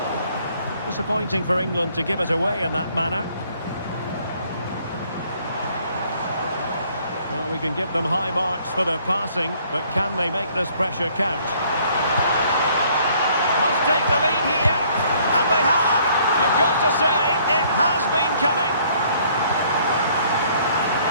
Disappointing for England to give it away in that manner. Well, we can give them high marks for their passing, but can they make this pressure count? Must take the lead here, and they have. You've got to say, it has been coming.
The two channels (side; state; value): both; inverted; correlation -0.62